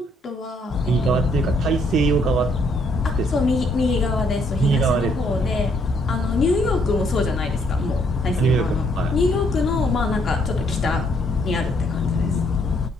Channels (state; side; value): normal; both; correlation 0.69